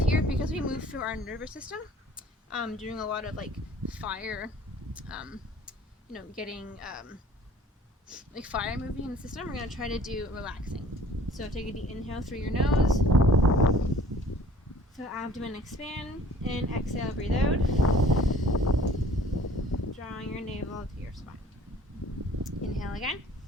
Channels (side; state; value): both; normal; correlation 0.52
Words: here, because we move through our nervous system, doing a lot of like fire, getting like fire moving in the system. We're going to try to do relaxing. So take a deep inhale through your nose. So abdomen expand, and exhale, breathe out. Drawing your navel to your spine. Inhale again.